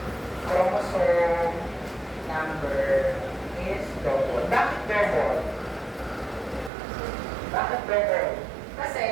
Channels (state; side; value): drops out; left; at 6.7 s